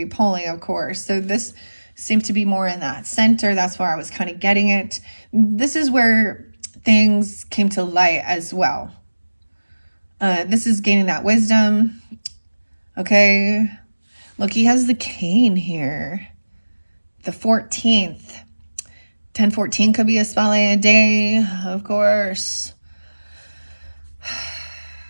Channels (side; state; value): both; inverted; correlation -1.00